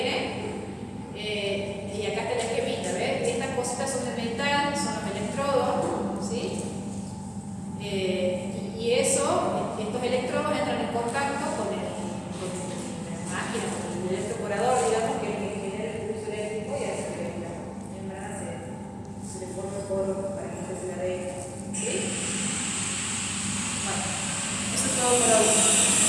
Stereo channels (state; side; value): identical; both; correlation 1.00